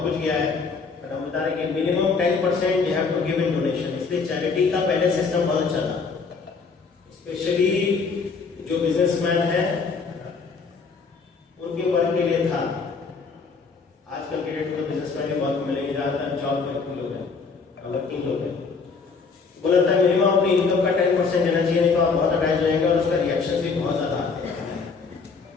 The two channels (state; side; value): quieter; right; 4.9 dB